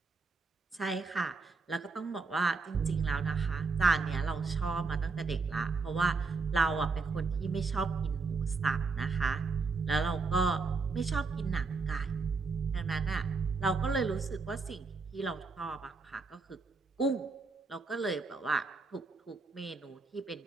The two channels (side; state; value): left; quieter; 4.4 dB